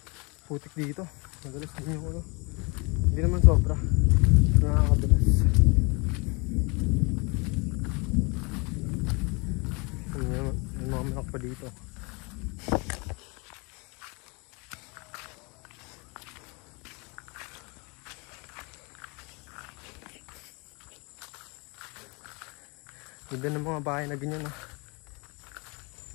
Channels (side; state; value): right; quieter; 29.6 dB